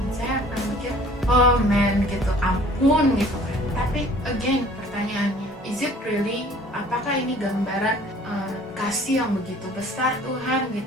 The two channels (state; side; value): normal; both; correlation 0.52